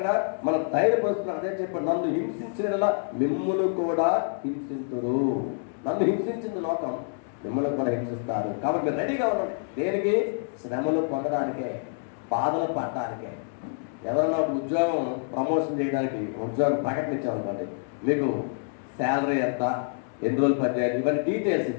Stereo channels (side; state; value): right; silent; digital silence